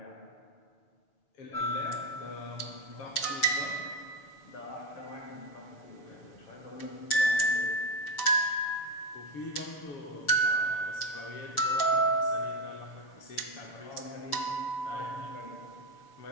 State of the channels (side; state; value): right; late; 6.9 ms